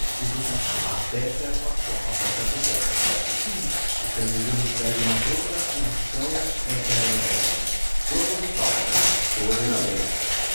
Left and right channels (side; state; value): both; inverted; correlation -1.00